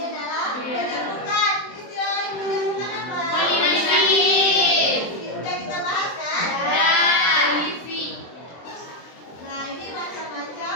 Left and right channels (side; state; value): right; late; 23 ms